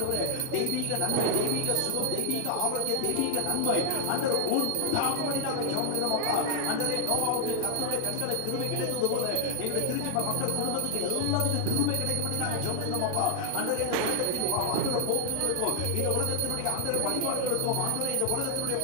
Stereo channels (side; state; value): both; different; correlation 0.00